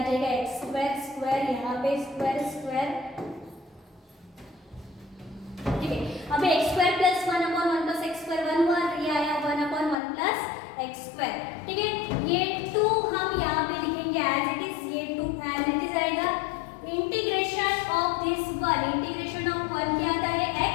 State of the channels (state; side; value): drops out; right; at 10.0 s